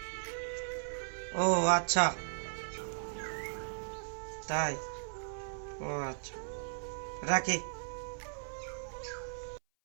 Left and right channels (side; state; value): left; silent; 53 dB below the other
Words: ও আচ্ছা, তাই? ও আচ্ছা, রাখি।